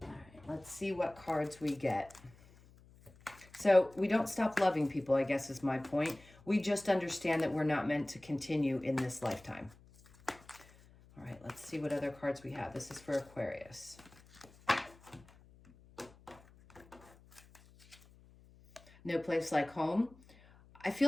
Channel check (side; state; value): left; noise; hum, 25 dB below the sound